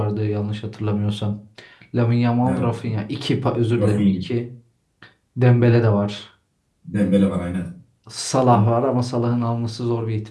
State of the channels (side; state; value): both; identical; correlation 1.00